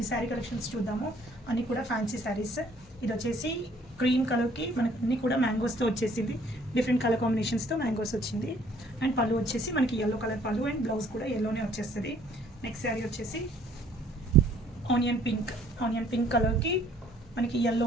శారీ కలెక్షన్స్ చూద్దాము. అన్నీ కూడా ఫ్యాన్సీ శారీస్. ఇది వచ్చేసి క్రీమ్ కలర్కి మనకి అన్నీ కూడా మ్యాంగోస్తో వచ్చేసింది. డిఫరెంట్ కలర్ కాంబినేషన్స్తో మ్యాంగోస్ వచ్చింది. అండ్ పళ్ళు వచ్చేసి మనకి ఎల్లో కలర్ పళ్ళు అండ్ బ్లౌజ్ కూడా ఎల్లోనే వచ్చేస్తుంది. నెక్స్ట్ శారీ వచ్చేసి ఆనియన్ పింక్ కలర్కి మనకి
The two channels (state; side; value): normal; both; correlation 0.60